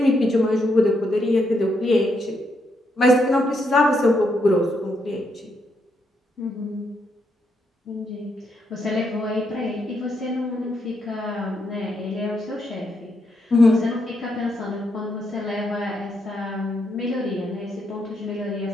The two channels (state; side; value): normal; both; correlation 0.78